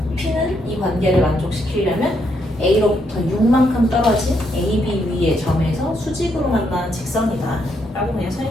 P는 이 관계를 만족시키려면 A로부터 6만큼 떨어진 AB 위의 점에서 수직으로 만나는 직선이다 라고 그냥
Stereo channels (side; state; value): both; normal; correlation 0.76